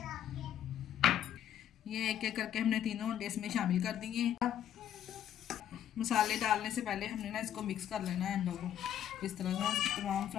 ये एक एक करके हमने तीनों अंडे इसमें शामिल कर दिए। मसाले डालने से पहले हमने ना इसको मिक्स कर लेना है अंडों को, इस तरह से तमाम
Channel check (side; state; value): right; quieter; 10.5 dB